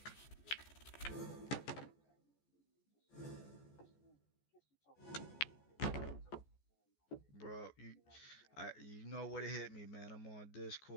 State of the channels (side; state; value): right; late; 14 ms